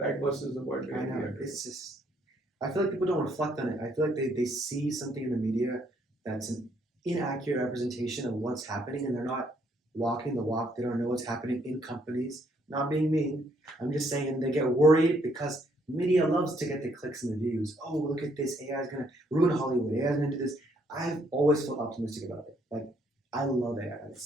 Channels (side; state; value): both; normal; correlation 0.69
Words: versus the world I know. It's just, I feel like people don't reflect on it. I feel like they see something in the media that's an inaccurate representation of what's happening, and they're not walking the walk. They don't know what's happening in companies. Not being mean. I'm just saying they get worried because media loves to get the clicks and the views. Oh, look at this. AI is going to ruin Hollywood. AI is going to do this. I've always felt optimistic about it. Like, I love AI.